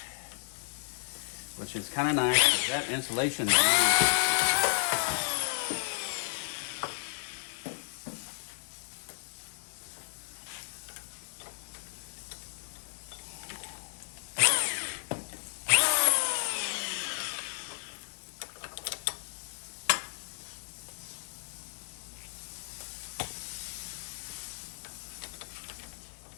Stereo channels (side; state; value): right; silent; digital silence